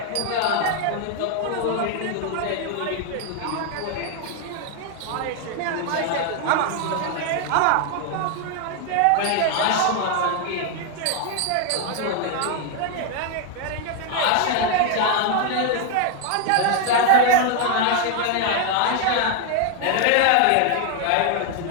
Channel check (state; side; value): different; both; correlation 0.00